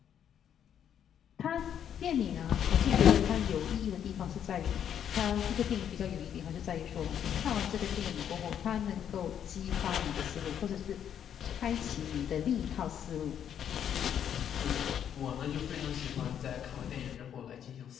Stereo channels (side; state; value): right; quieter; 9.1 dB